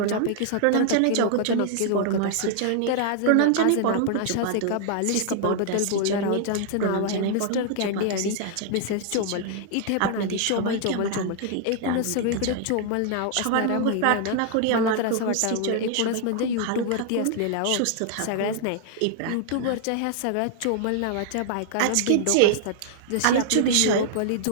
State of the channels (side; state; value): both; different; correlation -0.01